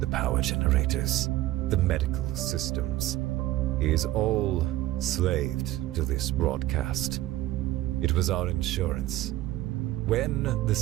power generators, the medical systems, is all slaved to this broadcast. It was our insurance. When the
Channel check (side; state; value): left; quieter; 15.6 dB